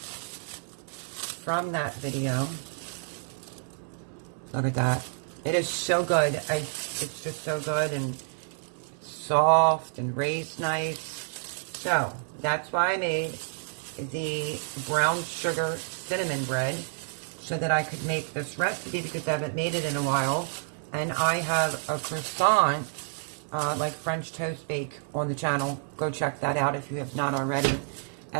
from that video. Look at that. It is so good. It's just so good and soft and raised nice. So that's why I made the brown sugar cinnamon bread, so that I could make this recipe, because I haven't made it in a while. And I have a croissant, like French toast bake, on the channel. Go check that out if you have not already.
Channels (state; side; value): silent; left; digital silence